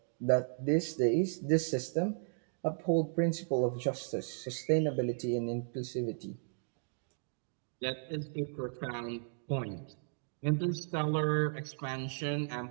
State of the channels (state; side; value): silent; left; digital silence